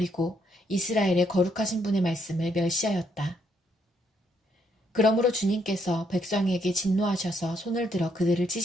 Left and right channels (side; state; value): both; normal; correlation 0.73